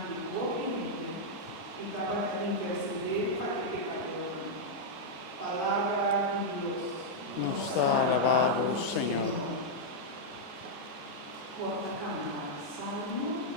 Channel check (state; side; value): normal; both; correlation -0.04